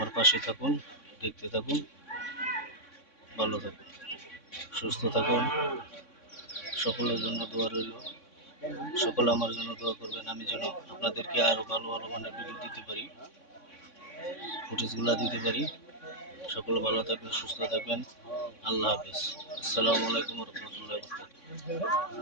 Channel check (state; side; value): late; right; 3.6 ms